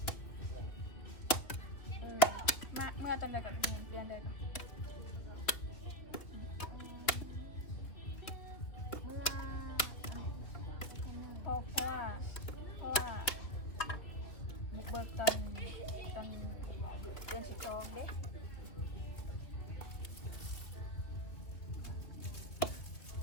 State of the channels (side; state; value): right; late; 3.2 ms